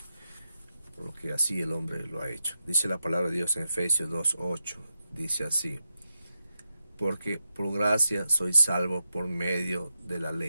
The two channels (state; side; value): inverted; both; correlation -0.86